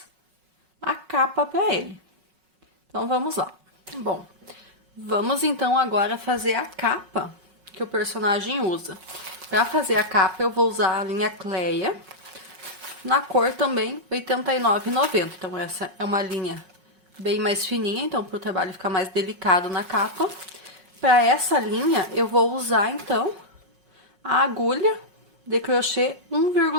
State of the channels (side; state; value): left; late; 5.4 ms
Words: a capa para ele. Então, vamos lá. Bom, vamos então agora fazer a capa que o personagem usa. Para fazer a capa, eu vou usar a linha Cleia, na cor também R$ 89,90. Então, essa é uma linha bem mais fininha, então, para o trabalho ficar mais delicado na capa. Para essa linha, eu vou usar, então, a agulha de crochê